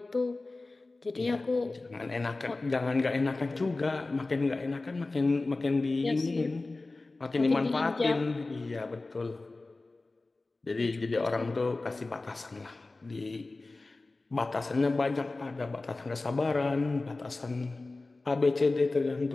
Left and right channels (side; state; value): right; quieter; 3.3 dB